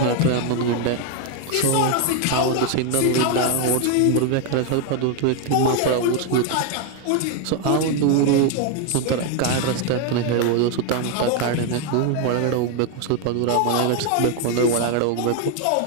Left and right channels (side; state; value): both; different; correlation 0.01